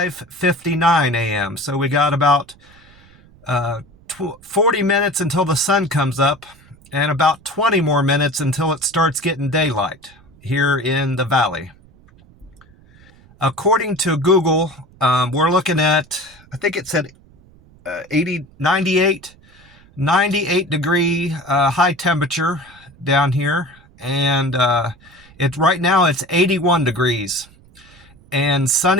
a.m., so we got about 40 minutes until the sun comes up, and about 20 more minutes until it starts getting daylight here in the valley. According to Google, we're looking at, I think it said 98 degree high temperature down here. And right now it's 81 degrees and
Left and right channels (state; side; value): noise; right; rumble, 27 dB below the sound